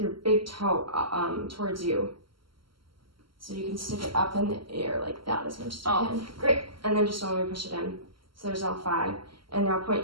your big toe towards you? So you can stick it up in the air like that as much as you can. Great, and then just don't let me push it in. So there's all five. And now point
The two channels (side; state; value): left; late; 0.74 ms